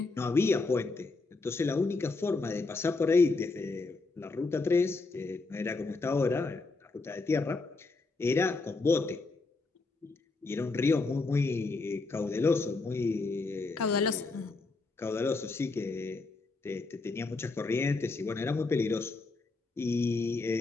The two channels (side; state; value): right; quieter; 3.7 dB